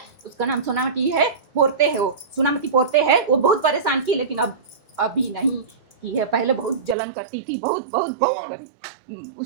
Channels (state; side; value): drops out; left; at 7.0 s